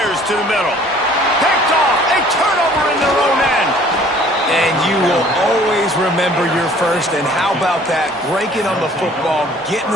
to the middle. Picked off. A turnover in their own end. And you will always remember your first. And how about that? Breaking on the football, getting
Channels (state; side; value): normal; both; correlation 0.54